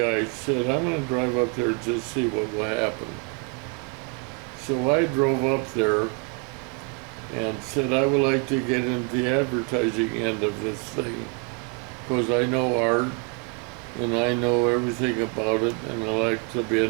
I said, I'm going to drive up there and just see what will happen. So I drove up there and said, I would like to get into the advertising end of this thing, because I know art and I know everything about it, and I like to be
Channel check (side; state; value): left; quieter; 32.6 dB